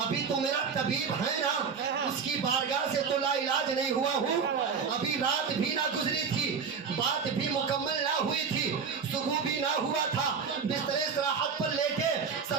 ابھی تو میرا طبیب ہے نا، اس کی بارگاہ سے تو لا علاج نہیں ہوا ہوں، ابھی رات بھی نہ گزری تھی، بات بھی مکمل نہ ہوئی تھی، صبح بھی نہ ہوا تھا، بستر استراحت پر لیٹے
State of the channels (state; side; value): quieter; left; 6.0 dB